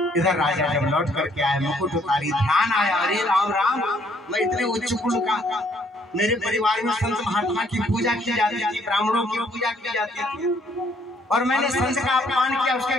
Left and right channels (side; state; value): both; normal; correlation 0.66